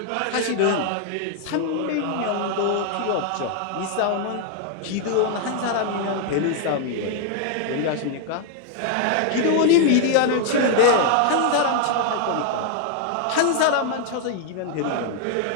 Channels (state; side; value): different; both; correlation 0.00